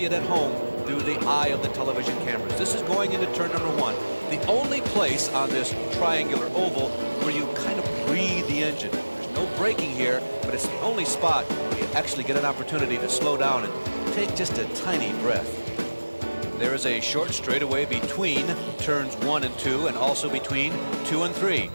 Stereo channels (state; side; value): inverted; both; correlation -1.00